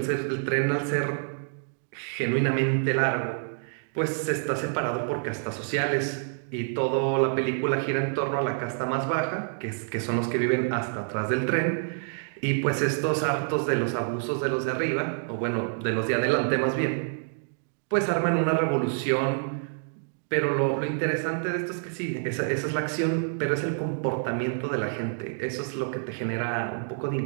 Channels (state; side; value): silent; left; digital silence